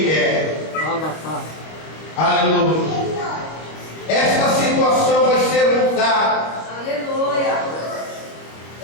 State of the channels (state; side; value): late; right; 25 ms